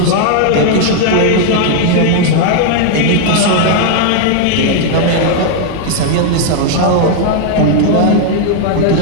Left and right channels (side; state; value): both; different; correlation 0.00